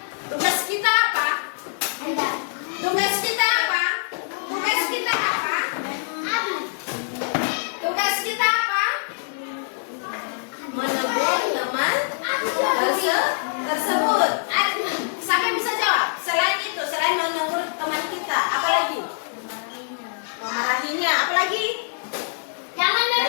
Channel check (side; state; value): right; quieter; 37.0 dB